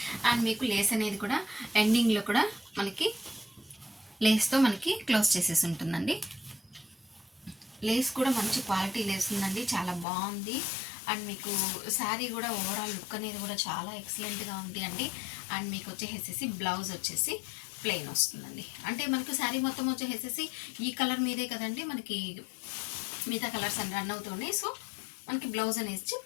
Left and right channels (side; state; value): right; drops out; at 10.1 s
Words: అండ్ మీకు లేస్ అనేది కూడా ఎండింగ్లో కూడా మనకి లేస్తో మనకి క్లోజ్ చేసేసి ఉంటుందండి. లేస్ కూడా మంచి క్వాలిటీ లేస్ ఉందండి, చాలా బాగుంది. అండ్ మీకు శారీ కూడా ఓవరాల్ లుక్ అనేది కూడా చాలా ఎక్సలెంట్గా ఉంది అండి. అండ్ మీకు వచ్చేసేసి బ్లౌజ్ వచ్చేసి ప్లెయిన్ వస్తుందండి. అంటే మనకు శారీ మొత్తం వచ్చేసేసి ఈ కలర్ మీదే కదండి, మనకి మిగతా కలర్స్ అని రన్ అవుతున్నాయి. సో మనకి బ్లౌజ్ అనేది